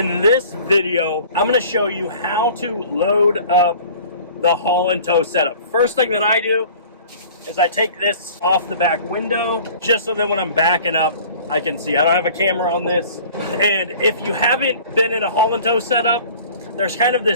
this video, I'm going to show you how to load up the haul and tow setup. First thing that I do is I take this off the back window just so that when I'm backing up, I can see. I don't have a camera on this. And if you haven't been in a haul and tow setup, there's kind of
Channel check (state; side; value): inverted; both; correlation -0.47